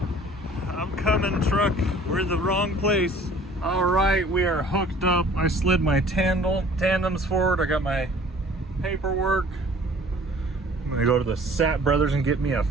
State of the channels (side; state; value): both; normal; correlation 0.51